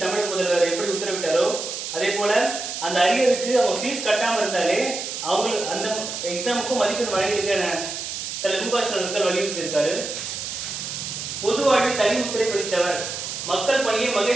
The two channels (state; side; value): noise; right; hiss, 6 dB below the sound